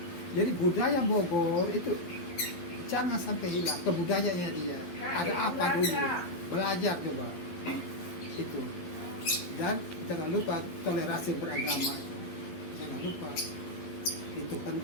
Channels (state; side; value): late; right; 11 ms